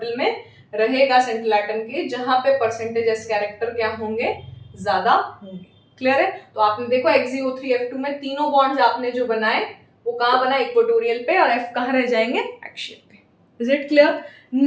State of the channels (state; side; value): identical; both; correlation 1.00